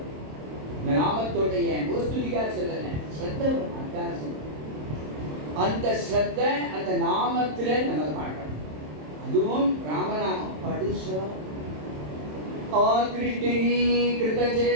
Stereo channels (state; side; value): late; left; 27 ms